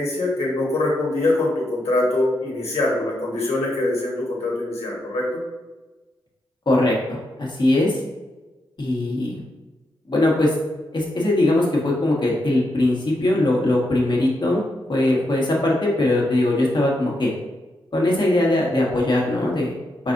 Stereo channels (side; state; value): both; normal; correlation 0.82